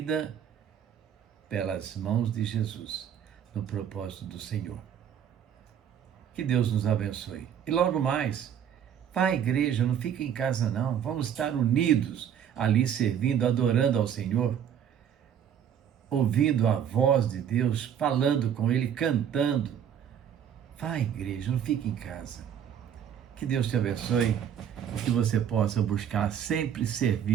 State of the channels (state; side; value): quieter; left; 9.0 dB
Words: pelas mãos de Jesus, no propósito do Senhor. Que Deus nos abençoe. E logo mais, vá à igreja, não fique em casa não, vamos estar unidos ali servindo, adorando ao Senhor, ouvindo a voz de Deus, falando com Ele, cantando. Vá à igreja, não fique em casa. Que Deus te abençoe e que você possa buscar sempre